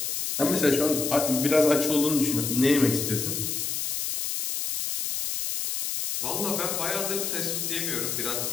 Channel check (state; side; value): noise; left; hiss, 2 dB below the sound